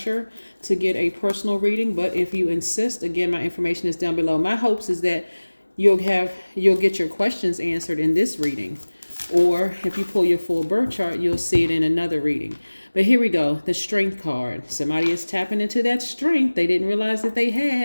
to get a personal reading, but if you insist, again, my information is down below. My hopes is that you'll get your questions answered in this reading, or if you pull your full birth chart, you'll see it in another reading. But here we go, the Strength card. Somebody is tapping into that strength they didn't realize that they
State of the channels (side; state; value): both; inverted; correlation -1.00